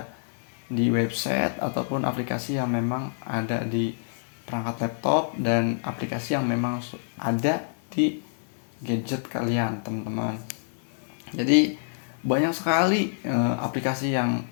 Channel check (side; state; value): right; silent; 56 dB below the other